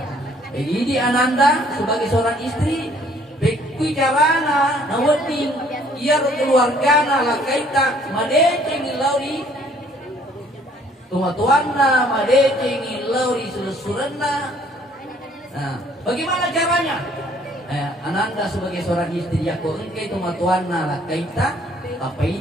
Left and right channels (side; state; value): both; normal; correlation 0.60